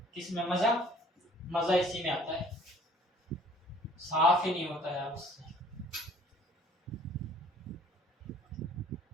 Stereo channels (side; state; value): both; normal; correlation 0.55